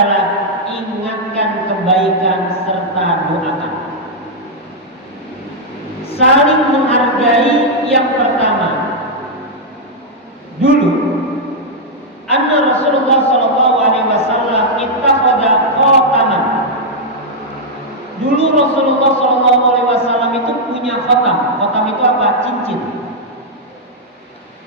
ingatkan kebaikan serta doakan. Saling menghargai yang pertama. Dulu anna Rasulullah sallallahu alaihi wasallam ittakhadha khataman. Dulu Rasulullah sallallahu alaihi wasallam itu punya khatam. Khatam itu apa? Cincin.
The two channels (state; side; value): normal; both; correlation -0.04